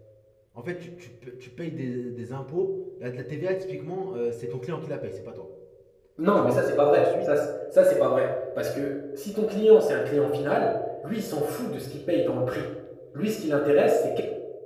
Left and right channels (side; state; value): both; identical; correlation 1.00